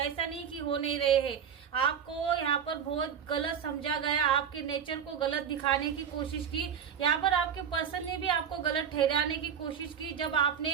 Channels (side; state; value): left; quieter; 7.8 dB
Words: ऐसा नहीं कि हो नहीं रहे हैं। आपको यहाँ पर बहुत गलत समझा गया, आपके नेचर को गलत दिखाने की कोशिश की, यहाँ पर आपके पर्सन ने भी आपको गलत ठहराने की कोशिश की। जब